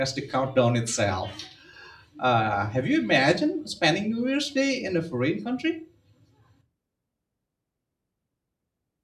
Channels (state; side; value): identical; both; correlation 1.00